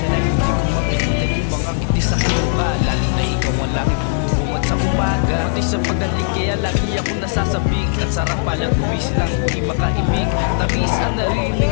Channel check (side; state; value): right; silent; digital silence